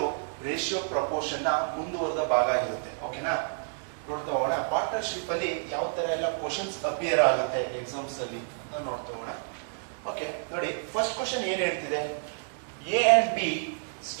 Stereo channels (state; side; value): silent; left; digital silence